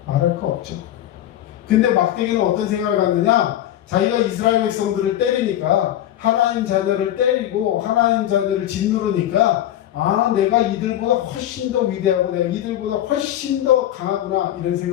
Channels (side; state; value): right; quieter; 12.3 dB